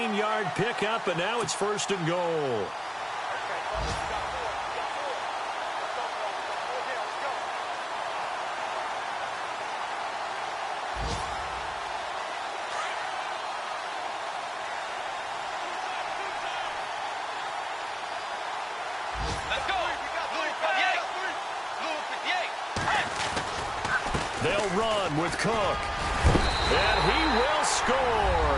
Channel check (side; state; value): both; identical; correlation 1.00